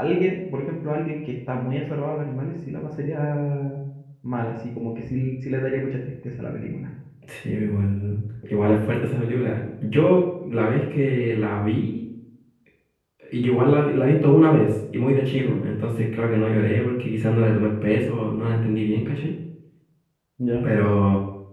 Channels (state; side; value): identical; both; correlation 1.00